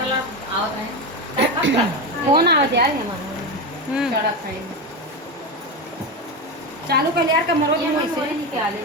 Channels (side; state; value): both; normal; correlation 0.16